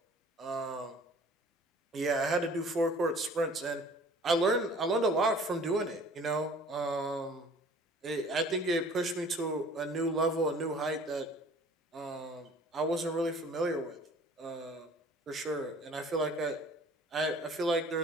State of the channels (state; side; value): normal; both; correlation 0.49